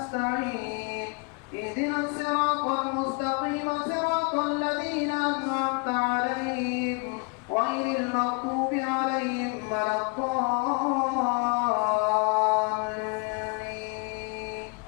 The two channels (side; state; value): right; quieter; 31.8 dB